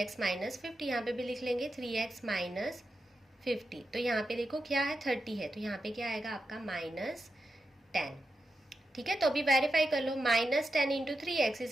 माइनस 50, यहाँ पे भी लिख लेंगे 3x माइनस 50। तो यहाँ पे देखो क्या है 30 है, तो यहाँ पे क्या आएगा आपका माइनस 10। ठीक है, तो अभी वेरीफाई कर लो, minus 10 into 3x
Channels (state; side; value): normal; both; correlation 0.88